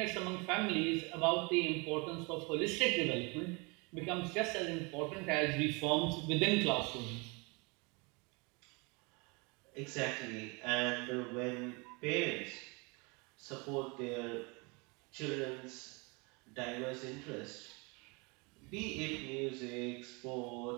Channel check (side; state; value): left; quieter; 29.2 dB